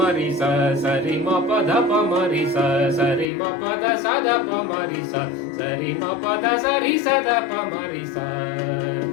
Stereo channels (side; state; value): right; drops out; at 3.2 s